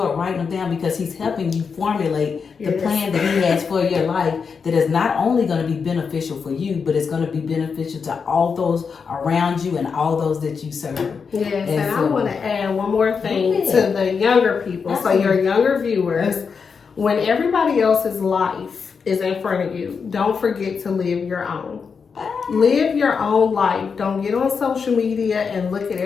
writing them down, because He's helping you formulate the plan that He has for your life, that is not only going to be beneficial for you, but it's going to be beneficial to all those around you and all those that you serve. Yes, and so, I want to add one more thing to the younger people. Absolutely. So your younger viewers, when everybody else's life is in front of you, don't forget to live your own. Live your own life. Don't get on social media and look at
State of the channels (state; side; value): quieter; right; 5.7 dB